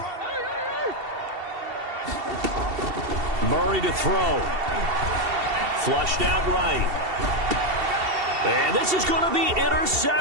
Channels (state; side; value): late; left; 2.7 ms